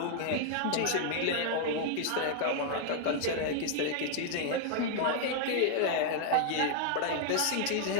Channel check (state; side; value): different; both; correlation 0.00